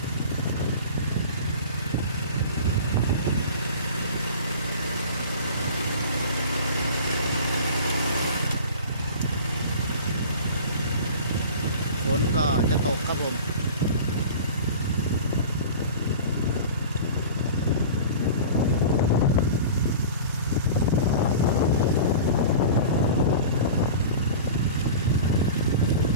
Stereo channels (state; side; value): inverted; both; correlation -0.37